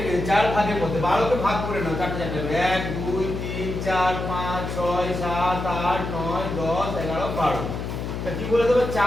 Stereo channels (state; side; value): noise; left; hum, 5 dB below the sound